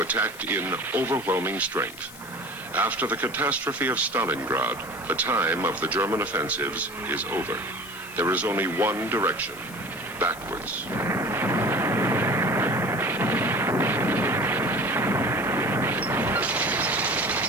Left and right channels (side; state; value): left; noise; hiss, 17 dB below the sound